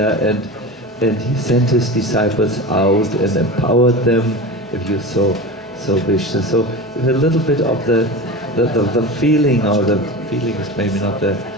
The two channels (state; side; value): normal; both; correlation 0.29